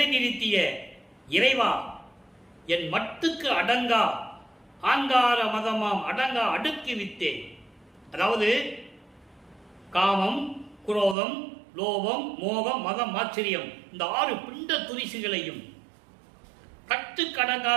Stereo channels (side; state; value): left; drops out; at 11.2 s